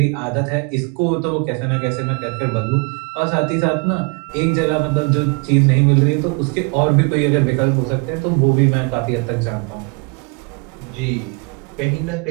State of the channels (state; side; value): quieter; left; 33.0 dB